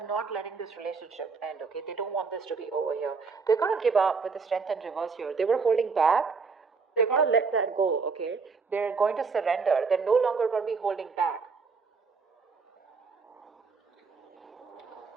not letting this relationship end, okay? They don't want this to be over here. They're going to give up with the Strength in reverse here. They were holding back. They're going to let that go, okay? They're going to surrender. They're no longer going to be holding back.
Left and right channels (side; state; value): left; quieter; 4.9 dB